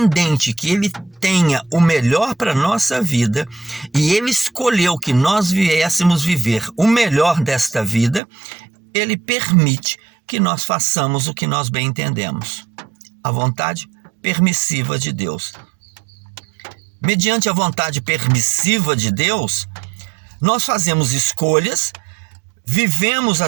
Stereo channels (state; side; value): drops out; left; at 8.2 s